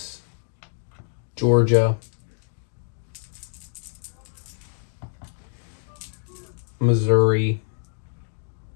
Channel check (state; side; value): silent; right; digital silence